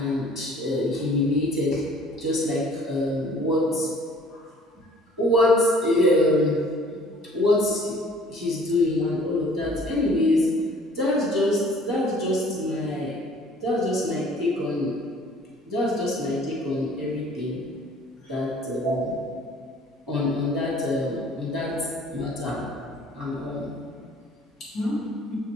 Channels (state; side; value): normal; both; correlation 0.53